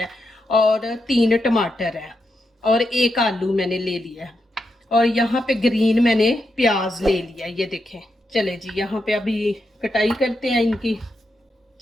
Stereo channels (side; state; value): both; normal; correlation 0.84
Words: है, और 3 टमाटर है, और 1 आलू मैंने ले लिया है, और यहाँ पे ग्रीन मैंने प्याज ले लिया। ये देखें। चले जी यहाँ पे अभी कटाई करते हैं इनकी।